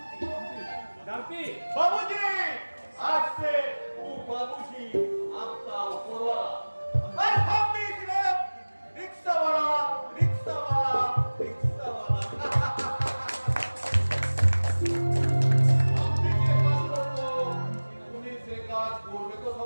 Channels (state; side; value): inverted; both; correlation -1.00